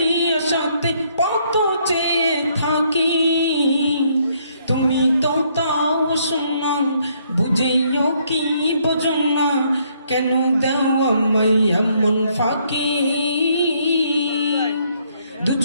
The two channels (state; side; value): inverted; both; correlation -0.69